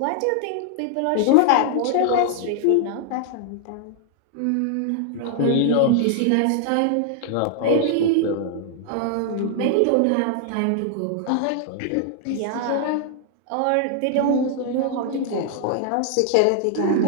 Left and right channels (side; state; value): both; different; correlation 0.00